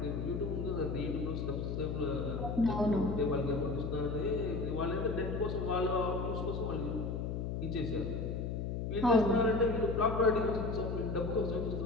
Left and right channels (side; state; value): left; noise; hum, 2 dB below the sound